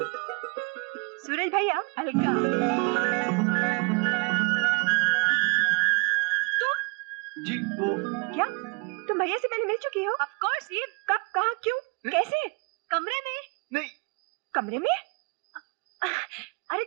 सूरज भैया, अलका। जी वो क्या तुम भैया से पहले मिल चुकी हो? Of course. ये कब, कहाँ, क्यों, कैसे? कमरे में? नहीं। कमरे में? अरे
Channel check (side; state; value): left; quieter; 31.8 dB